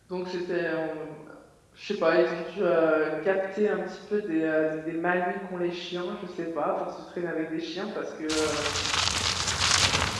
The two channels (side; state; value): both; identical; correlation 1.00